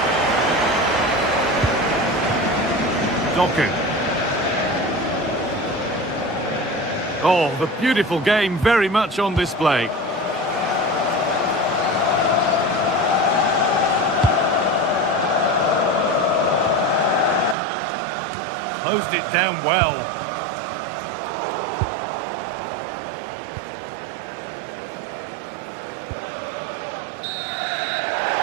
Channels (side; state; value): left; drops out; at 17.6 s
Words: Doku. Oh, the beautiful game very much on display. Closed it down well.